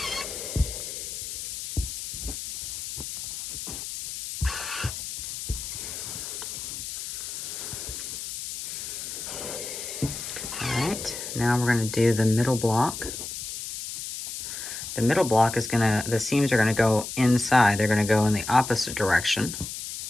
All right, now we're going to do the middle block. The middle block is the seams are gonna go inside. They're gonna go in the opposite direction.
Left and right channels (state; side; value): noise; left; hiss, 7 dB below the sound